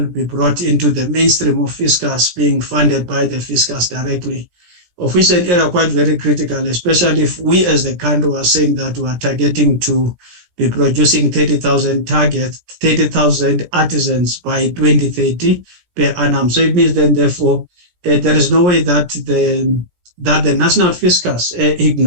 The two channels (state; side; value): late; left; 17 ms